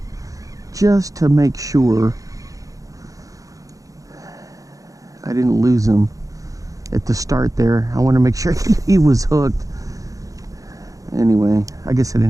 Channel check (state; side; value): late; left; 0.16 ms